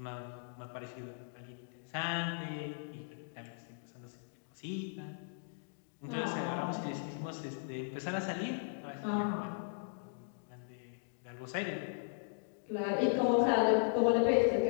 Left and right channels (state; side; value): silent; right; digital silence